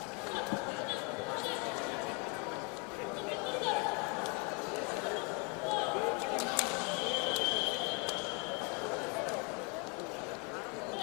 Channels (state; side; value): quieter; right; 33.2 dB